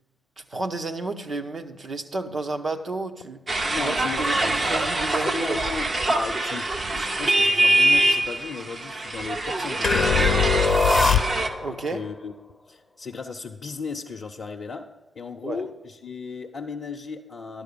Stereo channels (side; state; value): both; normal; correlation 0.83